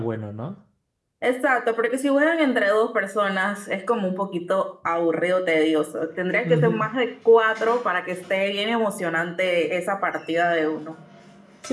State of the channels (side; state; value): both; identical; correlation 1.00